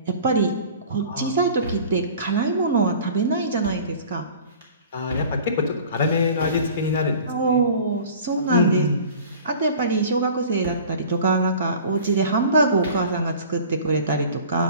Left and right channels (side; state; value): both; inverted; correlation -0.43